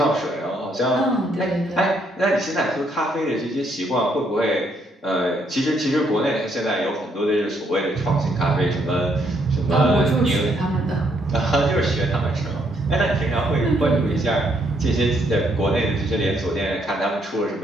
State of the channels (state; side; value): normal; both; correlation 0.72